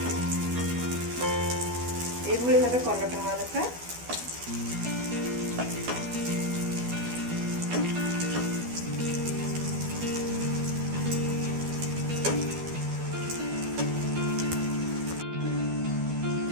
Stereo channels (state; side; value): late; left; 12 ms